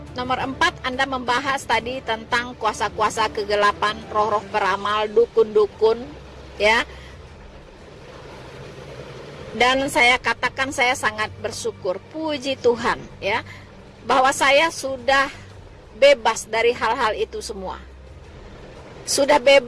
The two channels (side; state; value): both; identical; correlation 1.00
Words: nomor 4 Anda membahas tadi tentang kuasa-kuasa kegelapan, roh-roh peramal, dukun-dukun, ya. Dan saya katakan saya sangat bersyukur, puji Tuhan, ya, bahwa saya sudah bebas dari hal-hal itu semua. Sudah